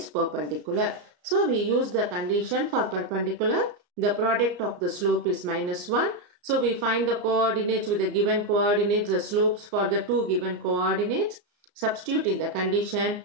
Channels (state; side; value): late; left; 34 ms